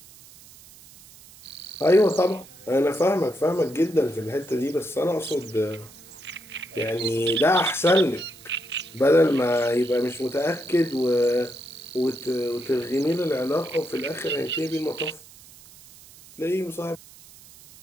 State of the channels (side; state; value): right; noise; hiss, 22 dB below the sound